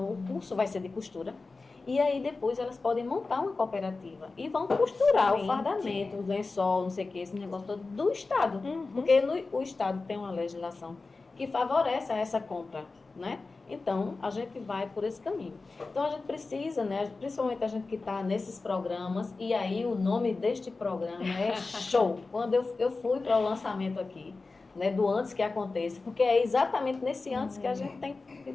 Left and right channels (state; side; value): quieter; right; 3.8 dB